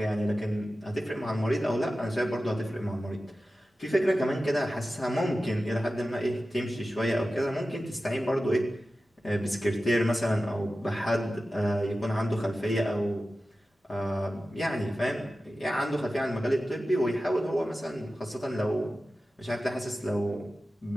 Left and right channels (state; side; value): normal; both; correlation 0.94